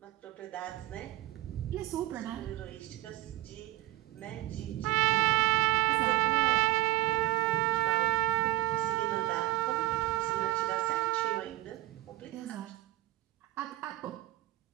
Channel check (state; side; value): quieter; left; 16.9 dB